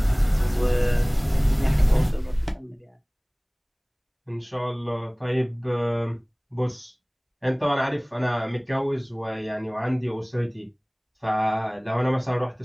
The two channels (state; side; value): identical; both; correlation 1.00